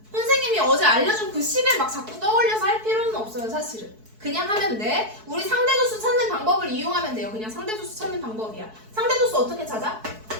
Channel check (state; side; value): late; left; 4.6 ms